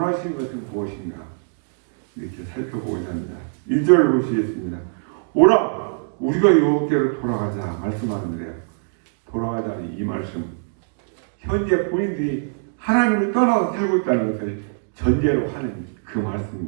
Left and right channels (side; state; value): left; silent; digital silence